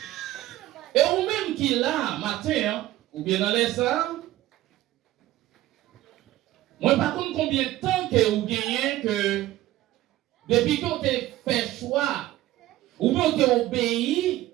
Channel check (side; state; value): left; quieter; 15.6 dB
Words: Et ou même qu'il a matin, ou bien dans les salles, moi par contre combien de temps que vous gagnez que depuis que vous avez fait choix, ou bien vous avez obéi